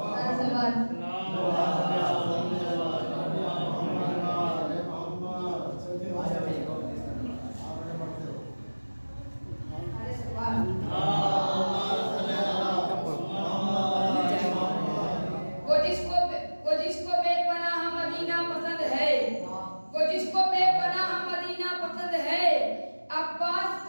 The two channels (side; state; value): both; inverted; correlation -1.00